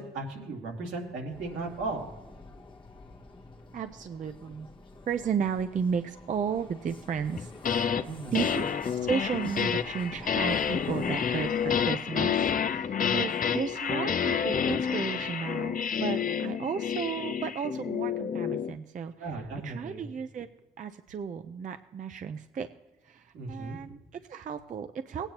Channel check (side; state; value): both; normal; correlation 0.47